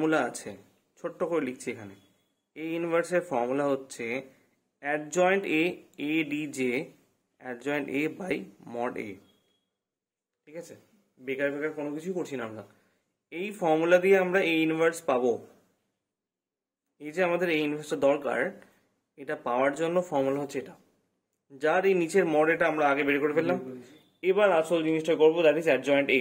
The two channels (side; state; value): both; identical; correlation 1.00